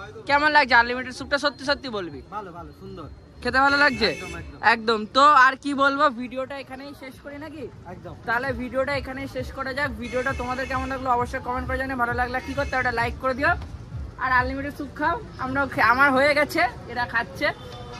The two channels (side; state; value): both; identical; correlation 1.00